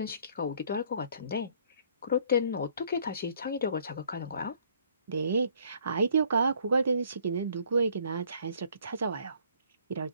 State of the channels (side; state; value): both; inverted; correlation -0.60